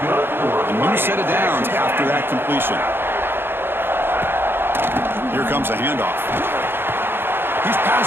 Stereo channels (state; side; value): late; left; 0.10 ms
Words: A new set of downs after that completion. Here comes a handoff. He's